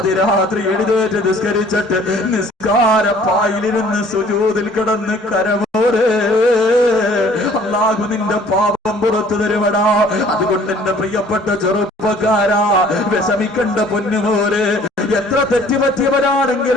എഴുന്നേറ്റ് നിസ്കരിച്ചിട്ട് നിസ്കാരപ്പായിലിരുന്ന് സുജൂദിൽ കിടന്ന് കരമോരെ അല്ലാഹു നിന്റെ പാപം പുറത്തു തരുവടാ. അതുകൊണ്ട് എന്റെ പ്രിയപ്പെട്ട ചെറുപ്പക്കാരാ, വിഷമിക്കണ്ട പൊന്നുമോരെ. എത്ര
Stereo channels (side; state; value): both; normal; correlation 0.54